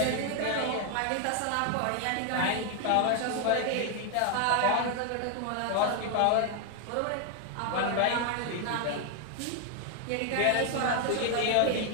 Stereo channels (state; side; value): different; both; correlation 0.00